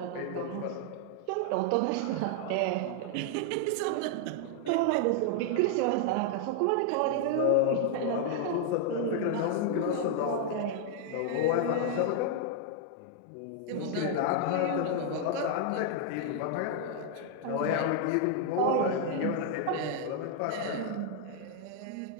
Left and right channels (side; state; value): both; different; correlation 0.00